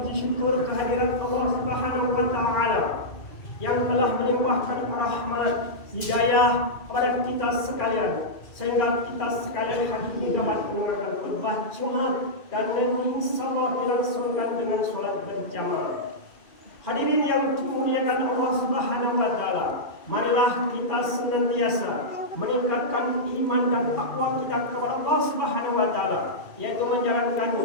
syukur kehadiran Allah Subhanahu wa taala yang telah melimpahkan rahmat hidayah kepada kita sekalian, sehingga kita sekalian hari ini dapat mendengarkan khutbah Jumat dan insyaallah dilangsungkan dengan sholat berjamaah. Hadirin yang dimuliakan Allah Subhanahu wa taala, marilah kita senantiasa meningkatkan iman dan takwa kita kepada Allah Subhanahu wa taala, yaitu menjalankan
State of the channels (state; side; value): late; right; 2.3 ms